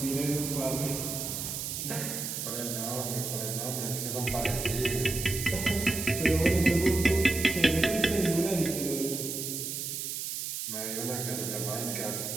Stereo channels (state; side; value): noise; right; hiss, 4 dB below the sound